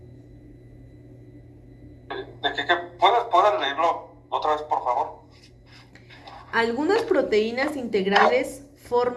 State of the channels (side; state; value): both; identical; correlation 1.00